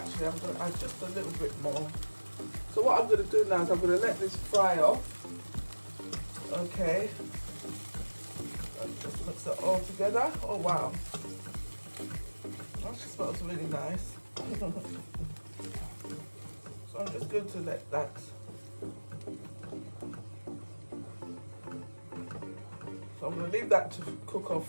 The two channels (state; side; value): inverted; both; correlation -1.00